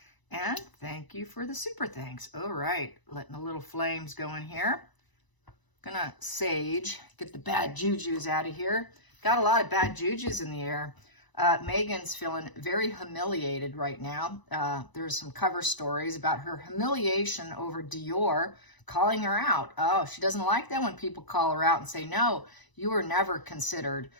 And thank you for the super thanks. All right, letting the little flames go in here. Gonna sage, get the bad jujus out of here. Got a lot of bad jujus in the air. Meghan's feeling very humiliated right now. There's some cover stories about her humiliation over Dior calling her out. Oh, she doesn't like that when people call her out and say, no, you were never considered.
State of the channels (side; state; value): right; late; 1.0 ms